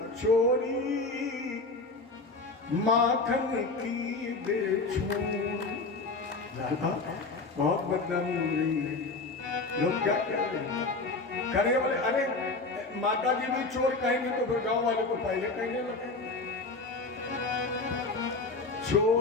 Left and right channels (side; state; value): right; quieter; 3.6 dB